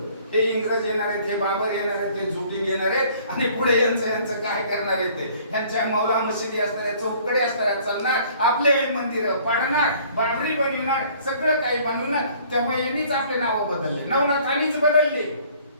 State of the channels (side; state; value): both; inverted; correlation -0.56